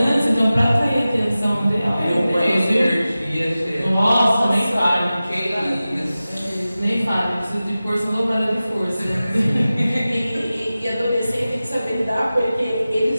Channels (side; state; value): both; inverted; correlation -0.95